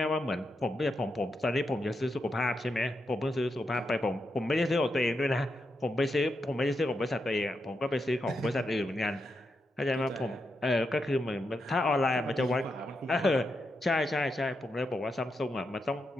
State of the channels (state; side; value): normal; both; correlation 0.85